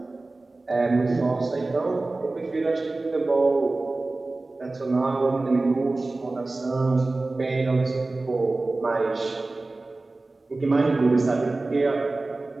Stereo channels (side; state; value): left; quieter; 3.2 dB